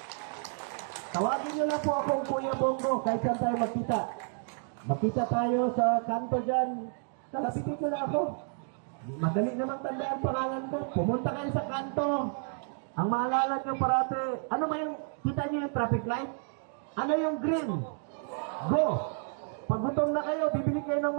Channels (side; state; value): left; silent; 57 dB below the other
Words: Tawagin nyo lang po akong Kuya Bongo kahit saan tayo magkita. Magkita tayo sa kanto dyan. Kalapitin nyo lang ako. Madali namang tandaan pangalan ko. Pumunta kayo sa kanto. Ang maalala nyo parate, ano ba yung, kita nyo yung traffic light? Ano yung green? Go! Pag gutom na kayo, bibili kayo ng